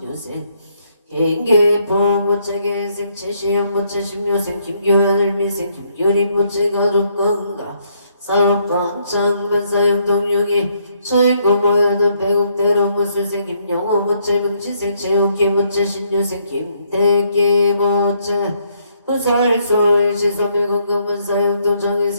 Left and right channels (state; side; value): inverted; both; correlation -0.72